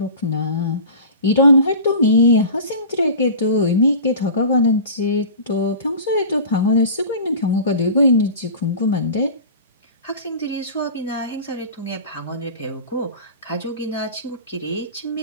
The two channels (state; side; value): inverted; both; correlation -0.37